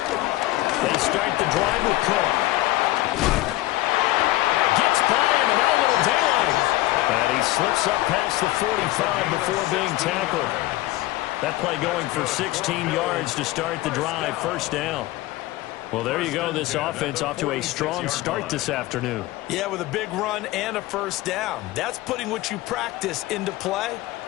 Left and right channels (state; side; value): quieter; right; 17.6 dB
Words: They start the drive with Cook. Gets by him, and now a little daylight. And he slips up past the 45 before being tackled. That play going for 16 yards to start the drive. 1st down. Well, there you go. This offense off to a strong start this afternoon. Yeah, with a big run and a 1st down. That's putting what you practice into play.